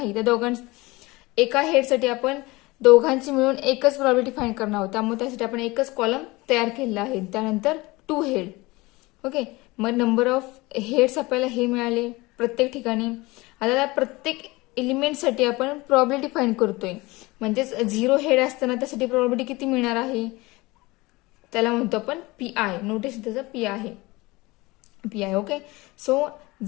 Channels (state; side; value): quieter; right; 22.2 dB